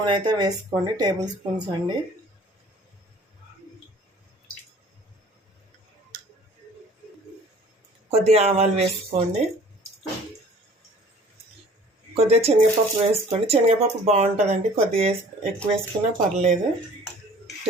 అయితే వేసుకోండి, టేబుల్ స్పూన్స్ అండి. కొద్దిగా ఆవాలు వేసుకోండి, కొద్దిగా శనగపప్పు వేసుకోండి. శనగపప్పు బాగుంటుందండి, కొద్దిగా ఎక్కువ వేసుకున్నా పర్లేదు,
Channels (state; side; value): normal; both; correlation 0.50